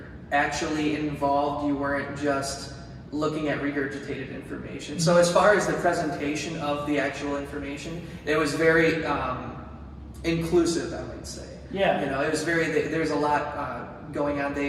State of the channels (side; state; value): both; identical; correlation 1.00